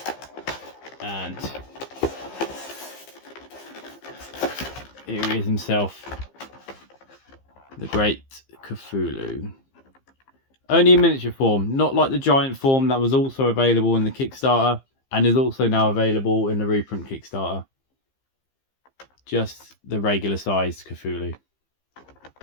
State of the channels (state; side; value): late; right; 15 ms